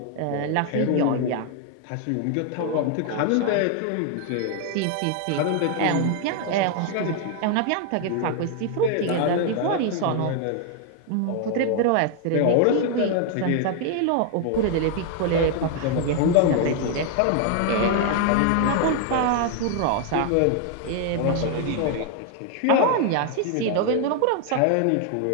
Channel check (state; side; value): different; both; correlation 0.00